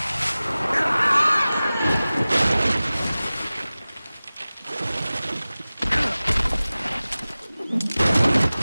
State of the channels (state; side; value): inverted; both; correlation -0.98